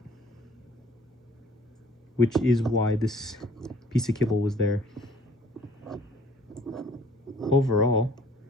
which is why this piece of kibble was there. Overall,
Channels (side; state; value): both; normal; correlation 0.56